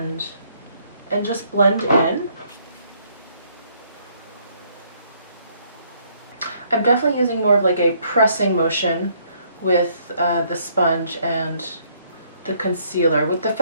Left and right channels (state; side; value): inverted; both; correlation -0.67